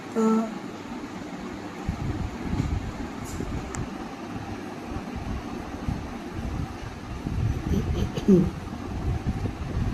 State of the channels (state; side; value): identical; both; correlation 1.00